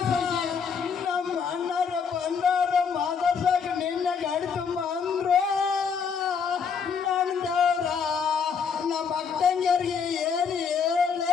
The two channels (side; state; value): right; quieter; 6.2 dB